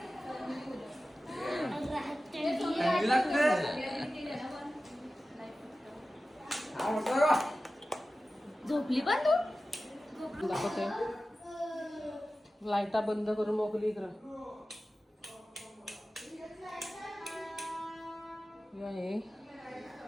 झोपली पण तू? दाखवते लाईटा बंद करून मोकली इकडं. हे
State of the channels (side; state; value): both; normal; correlation 0.95